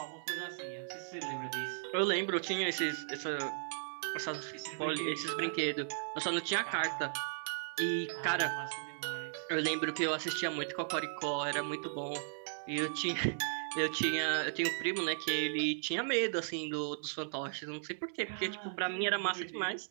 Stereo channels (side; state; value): left; silent; digital silence